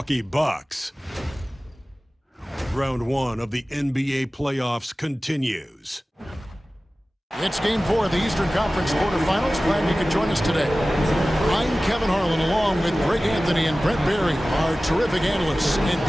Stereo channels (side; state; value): both; normal; correlation 0.97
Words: Bucks. Round 1 of the NBA playoffs continues. It's Game 4 of the Eastern Conference quarterfinals. Glad you could join us today. I'm Kevin Harlan, along with Greg Anthony and Brent Barry, our terrific analysts, and